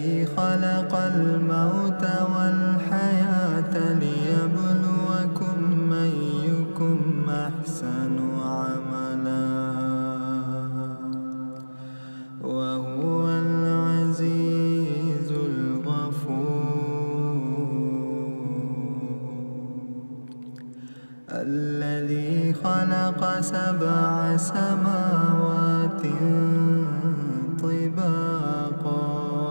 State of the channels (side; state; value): both; inverted; correlation -1.00